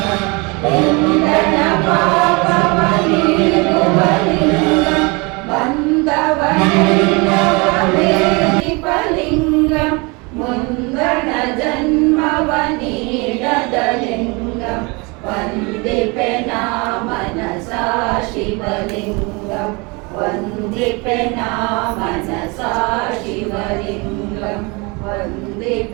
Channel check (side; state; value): left; quieter; 28.1 dB